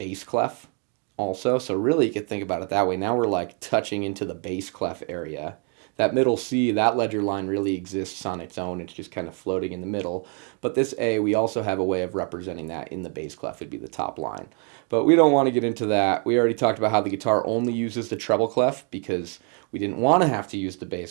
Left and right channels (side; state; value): left; quieter; 39.4 dB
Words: clef also. So really you could think about it that way. Now we're like touching into the bass clef area. That middle C, that ledger line really exists on its own. It's just kind of floating in the middle. But this A, we also have a way of representing that in the bass clef. It'd be the top line. But we don't want to get into that. We already talked about how the guitar only uses the treble clef because we didn't want to have to use the